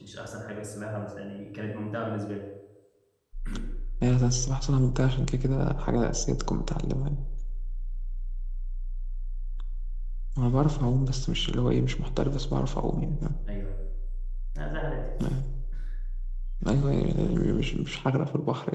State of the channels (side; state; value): both; identical; correlation 1.00